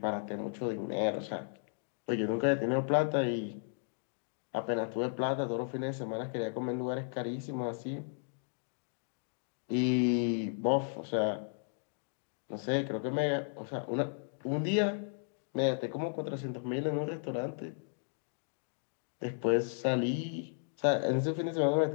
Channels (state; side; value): silent; right; digital silence